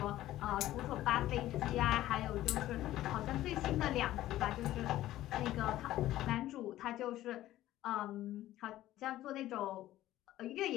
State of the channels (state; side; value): quieter; right; 14.5 dB